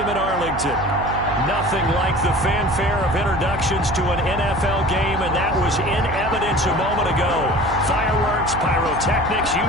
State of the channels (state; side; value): noise; right; hum, 9 dB below the sound